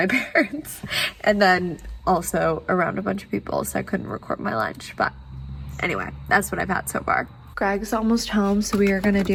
parents, and then also around a bunch of people, so I couldn't record my lunch. But anyway, that's what I've had so far. Greg's almost home, so we are gonna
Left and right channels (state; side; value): identical; both; correlation 1.00